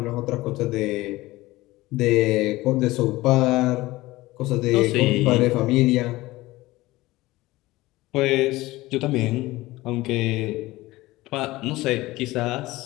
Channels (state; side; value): quieter; right; 18.8 dB